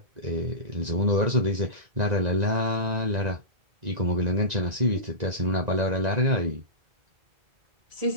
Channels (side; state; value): left; late; 1.9 ms